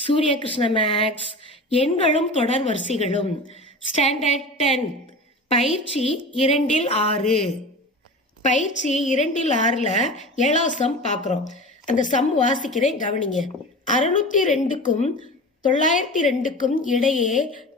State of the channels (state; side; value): normal; both; correlation 0.33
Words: Krishna maths. எண்களும் தொடர் வரிசைகளும் ஸ்டாண்டர்ட் 10 பயிற்சி 2-6. பயிற்சி 2-6ல் 7ஆம் சம் பார்க்குறோம். அந்த சம் வாசிக்கிறேன், கவனிங்க. 602க்கும் 902க்கும் இடையே